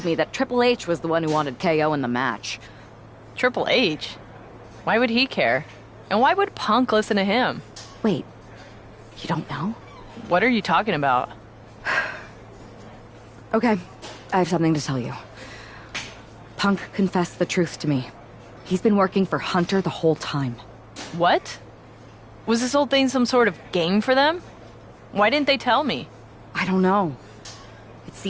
me that Triple H was the one who wanted KO in the match. Triple H? Why would he care? And why would Punk listen to him? Wait, you don't know? What are you talking about? Okay, I have something to tell you. Punk confessed the truth to me. He's been working for Hunter the whole time. What? Was this whole thing some sort of game for them? Why didn't they tell me? I don't know. It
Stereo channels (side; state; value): both; identical; correlation 1.00